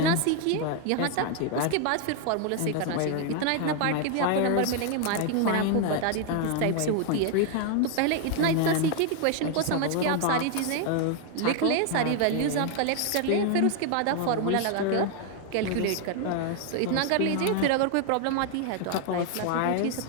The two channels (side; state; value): both; different; correlation 0.00